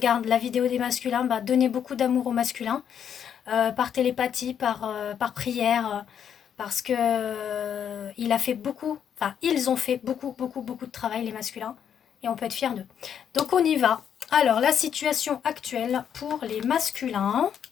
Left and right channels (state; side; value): quieter; right; 8.5 dB